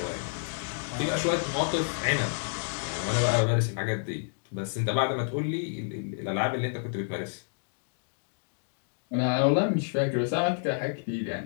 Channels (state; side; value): silent; right; digital silence